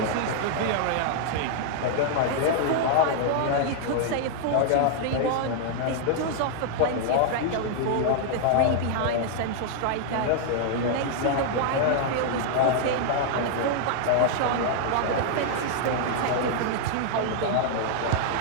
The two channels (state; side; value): different; both; correlation 0.00